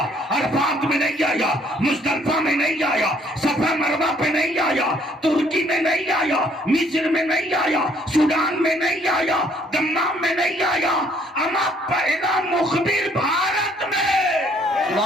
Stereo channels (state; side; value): normal; both; correlation 0.64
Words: अरफात में नहीं आया, मुज़दलिफा में नहीं आया, सफा मरवा पे नहीं आया, तुर्की में नहीं आया, मिस्र में नहीं आया, सूडान में नहीं आया, दम्माम में नहीं आया। अमा पहला मुखबिर भारत में।